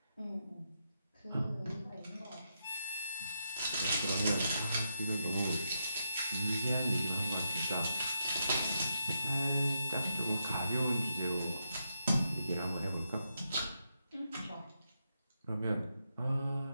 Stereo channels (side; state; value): both; inverted; correlation -0.82